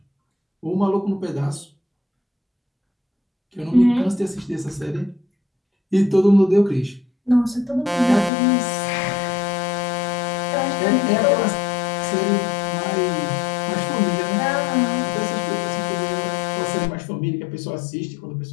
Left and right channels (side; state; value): right; drops out; at 8.3 s